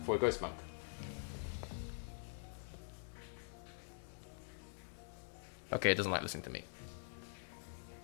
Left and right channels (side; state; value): right; silent; digital silence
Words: for Ghost Monk. Okay, it doesn't like listening to me.